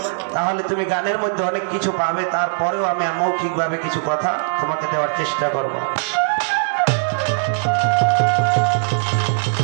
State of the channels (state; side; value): silent; left; digital silence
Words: তাহলে তুমি গানের মধ্যে অনেক কিছু পাবে। তারপরেও আমি মৌখিকভাবে কিছু কথা তোমাকে দেওয়ার চেষ্টা করব।